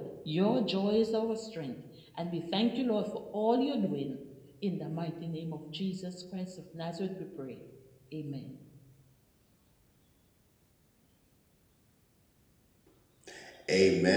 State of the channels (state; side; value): identical; both; correlation 1.00